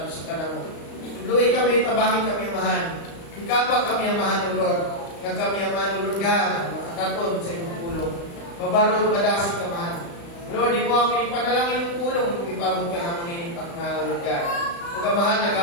ka na mo. Tuluy kami, tabahin kami ang mahal. Ikapa kami ang mahal Lord. Nga kami ang mahal Lord God, makakatod sa iyong pulong. Mabarog, madasig ka mahal. Lord, di mo ang pinipanalangin yung pulong kung ipabot ka na mo ninipak na Lord God. Huwag ka mahal,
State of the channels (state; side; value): late; right; 35 ms